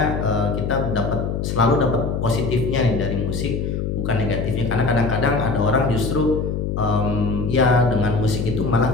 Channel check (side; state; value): left; noise; hum, 2 dB below the sound